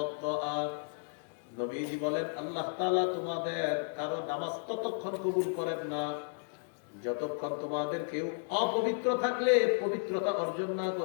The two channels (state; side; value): silent; right; digital silence